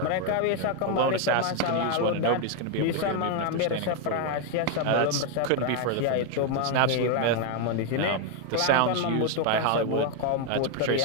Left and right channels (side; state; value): both; different; correlation 0.01